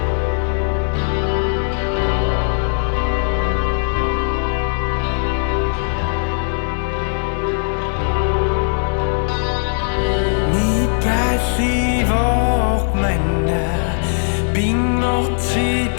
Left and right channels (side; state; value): right; silent; digital silence